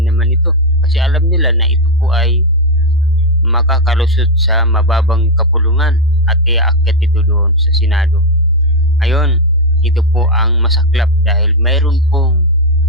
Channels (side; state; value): both; normal; correlation 0.02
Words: naman ito kasi alam nila na ito po ay makakalusot sa mababang kapulungan at iaakyat ito doon sa Senado. Ngayon, ito po ang masaklap dahil mayroon pong